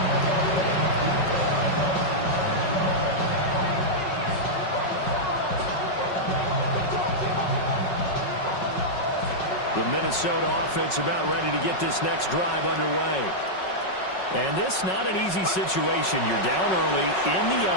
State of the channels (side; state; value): right; late; 5.4 ms